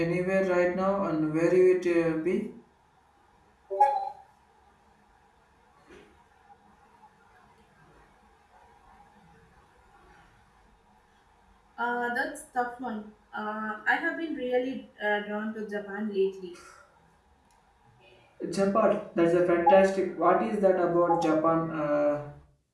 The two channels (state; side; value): identical; both; correlation 1.00